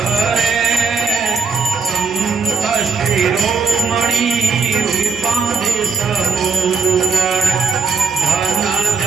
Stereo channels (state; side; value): quieter; left; 5.0 dB